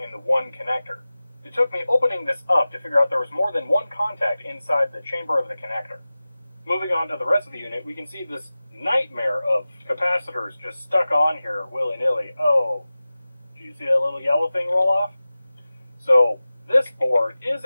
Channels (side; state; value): both; inverted; correlation -0.96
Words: in the one connector. It took me opening this up to figure out there was more than one contact inside the chamber of the connector. Moving on to the rest of the unit, we can see this nightmare of capacitors just stuck on here willy-nilly. Oh, do you see that little yellow thing roll off? So this board is,